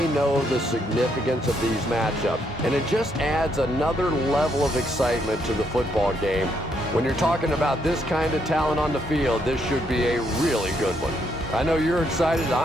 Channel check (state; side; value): normal; both; correlation 0.74